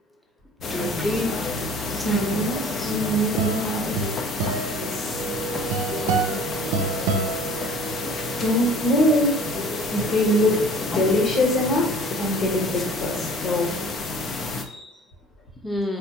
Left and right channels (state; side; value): normal; both; correlation 0.47